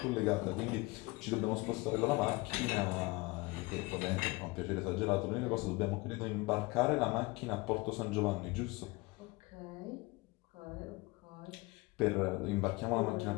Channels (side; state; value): right; quieter; 23.7 dB